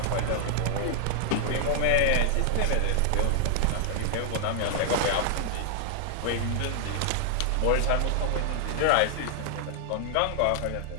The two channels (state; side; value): different; both; correlation -0.01